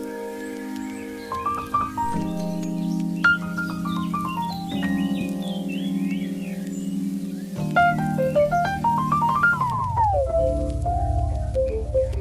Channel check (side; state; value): both; identical; correlation 1.00